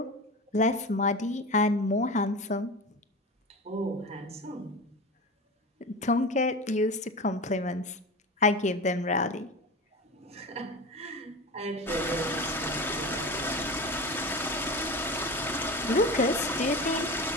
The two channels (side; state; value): both; normal; correlation 0.28